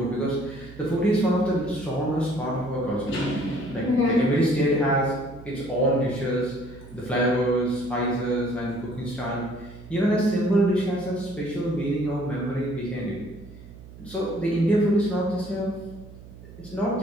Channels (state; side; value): noise; right; hum, 17 dB below the sound